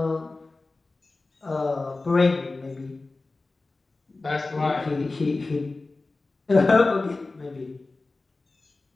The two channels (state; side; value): quieter; right; 3.4 dB